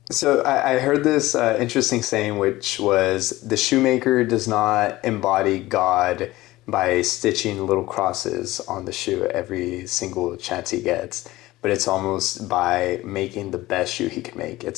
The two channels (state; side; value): quieter; right; 17.9 dB